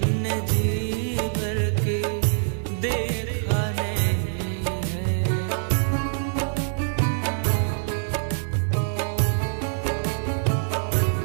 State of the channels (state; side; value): silent; left; digital silence